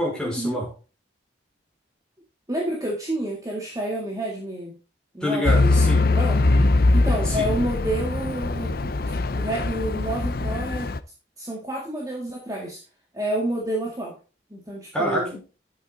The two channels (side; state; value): both; normal; correlation 0.76